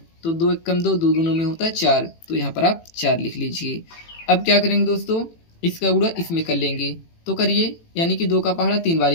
तो 2 1 कम 2, 2 दूनों में होता है 4, तो यहाँ पर आप 4 लिख लीजिए। अब क्या करेंगे दोस्तों, इसका गुणा इसमें कर लेंगे, तो करिए, यानी कि 2 का पहाड़ा 3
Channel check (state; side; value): late; right; 18 ms